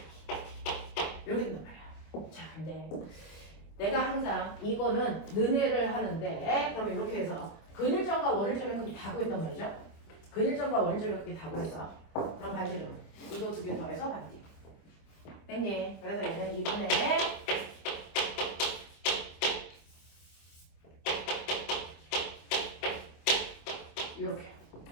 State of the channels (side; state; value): right; late; 25 ms